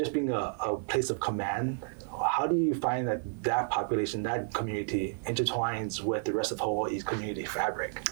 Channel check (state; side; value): silent; left; 57 dB below the other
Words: being a place of command, how do you find that population, that community intertwines with the rest of Hawaii's community fabric?